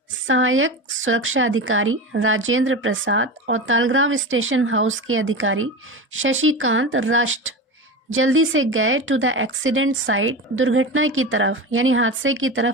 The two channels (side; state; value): both; normal; correlation 0.25